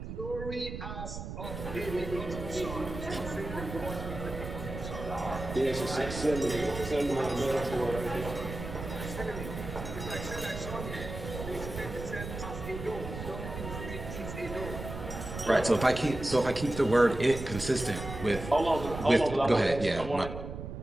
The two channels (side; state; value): right; noise; rumble, 8 dB below the sound